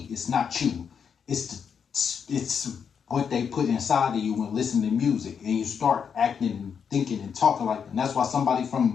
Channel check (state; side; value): quieter; right; 7.0 dB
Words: It's not you. It's what they put inside of you when listening to music, and you start acting and thinking and talking like that. And that's why somebody